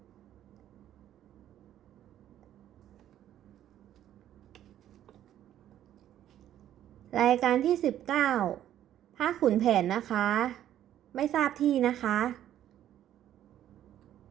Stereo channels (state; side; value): quieter; left; 11.6 dB